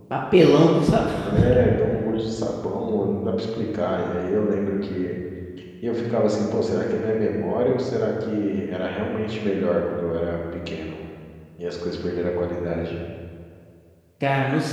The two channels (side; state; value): both; identical; correlation 1.00